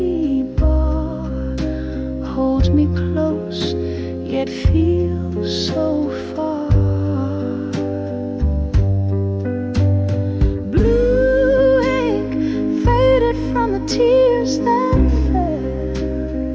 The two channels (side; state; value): both; identical; correlation 1.00